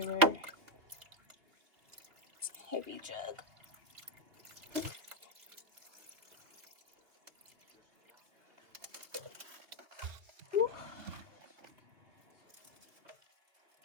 It's a heavy jug. Woo.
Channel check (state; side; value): late; left; 2.5 ms